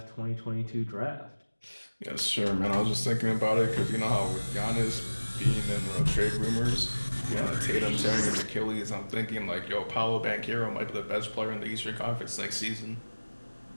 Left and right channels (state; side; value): inverted; both; correlation -1.00